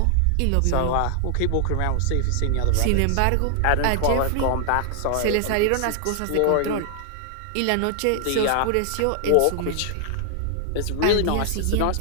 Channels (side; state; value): both; different; correlation 0.00